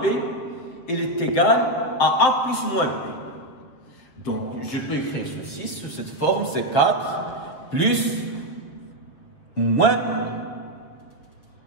B, il est égal à A plus moins B. Donc, je peux écrire ceci sous cette forme, c'est 4 plus moins,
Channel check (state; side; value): late; right; 7.4 ms